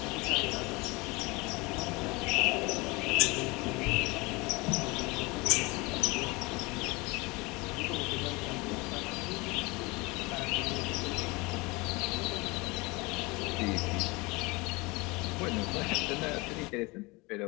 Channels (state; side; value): quieter; right; 25.0 dB